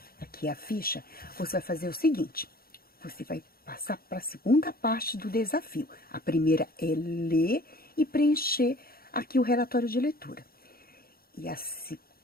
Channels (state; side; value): late; right; 0.44 ms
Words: aqui a ficha, você vai fazer o seguinte. Você vai passar para a segunda parte do desafio. A primeira é ler e preencher aqui o relatório de leitura. E a